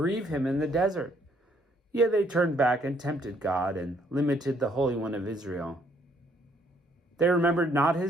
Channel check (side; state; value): both; normal; correlation 0.67